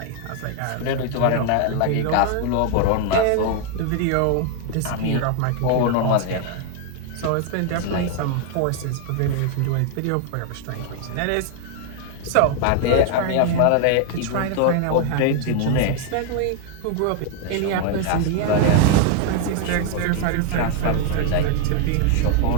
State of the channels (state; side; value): different; both; correlation 0.00